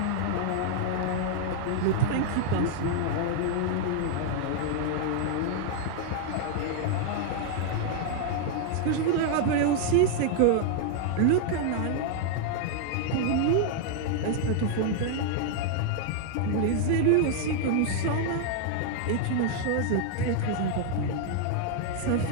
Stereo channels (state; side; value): different; both; correlation 0.00